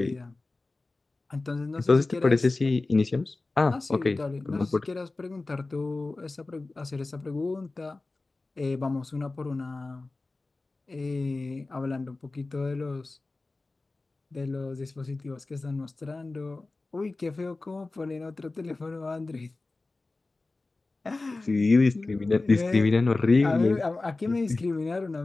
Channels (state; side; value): quieter; right; 3.3 dB